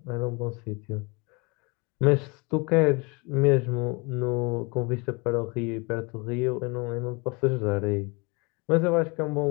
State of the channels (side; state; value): right; quieter; 29.4 dB